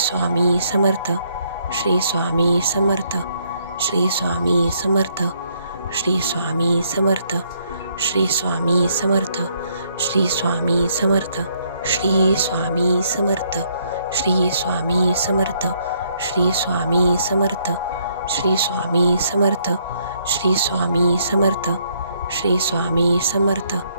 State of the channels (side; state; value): both; inverted; correlation -0.70